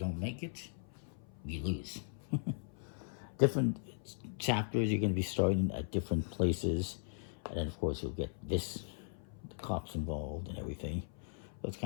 make it, you lose. Different chapters, you're going to be starting at different places. And then, of course, you'll get the cops involved and everything. So it's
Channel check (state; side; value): silent; right; 52 dB below the other